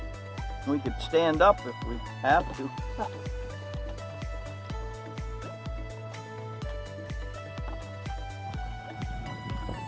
We could stand up if we have to.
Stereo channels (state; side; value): identical; both; correlation 1.00